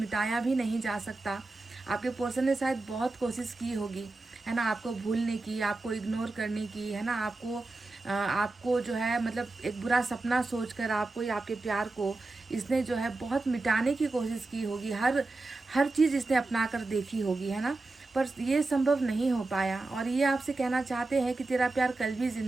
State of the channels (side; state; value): left; quieter; 3.2 dB